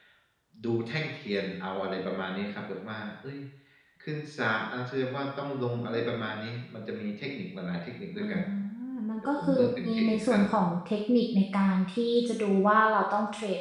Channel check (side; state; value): both; identical; correlation 1.00